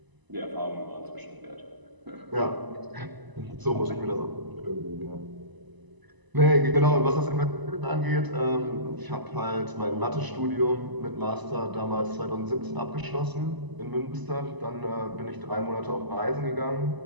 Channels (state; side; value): late; left; 1.0 ms